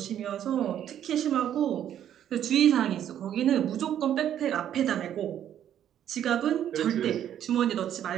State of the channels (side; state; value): left; quieter; 10.4 dB